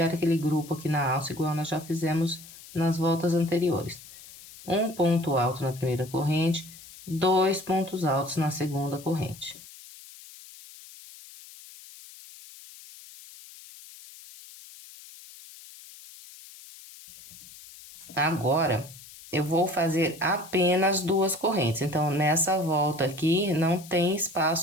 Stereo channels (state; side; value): noise; left; hiss, 18 dB below the sound